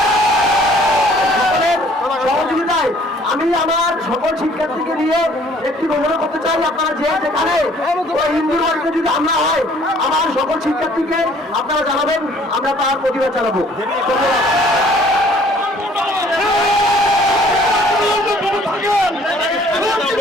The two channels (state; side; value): normal; both; correlation 0.57